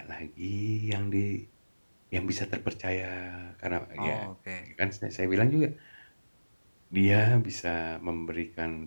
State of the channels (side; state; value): both; inverted; correlation -1.00